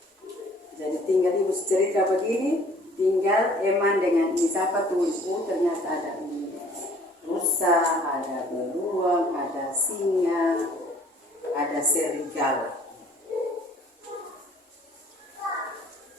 Jadi tinggal ibu cerita begini, tinggal Eman dengan ini siapa tulis, oh ternyata ada ini rusa, ada beruang, ada singa, ada serigala.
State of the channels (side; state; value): both; normal; correlation 0.56